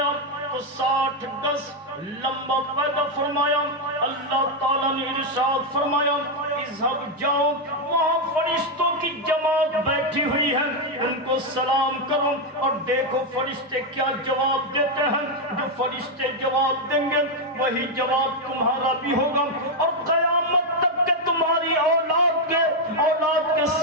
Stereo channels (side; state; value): both; normal; correlation 0.02